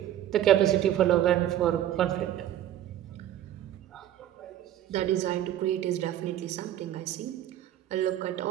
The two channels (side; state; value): left; quieter; 12.0 dB